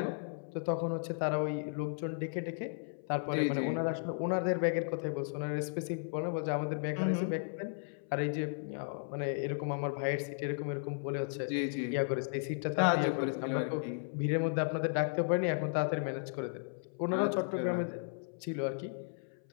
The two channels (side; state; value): right; silent; 55 dB below the other